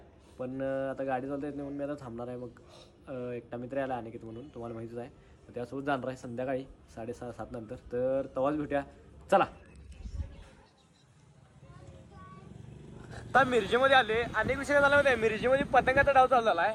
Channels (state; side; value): identical; both; correlation 1.00